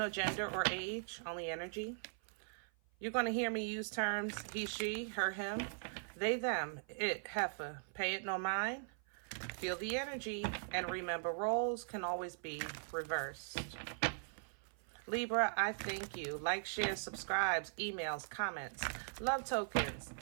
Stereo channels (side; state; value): left; silent; 51 dB below the other